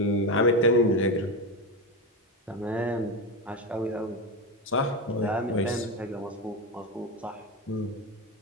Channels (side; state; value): both; normal; correlation 0.15